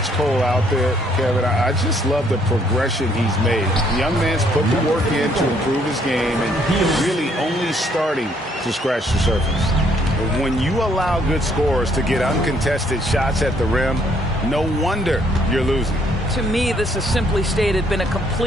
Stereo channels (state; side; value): normal; both; correlation 0.67